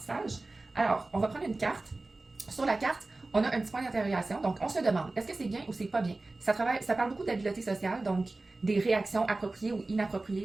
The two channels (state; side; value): quieter; left; 3.2 dB